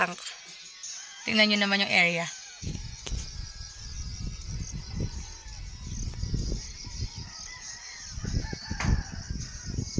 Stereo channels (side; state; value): both; identical; correlation 1.00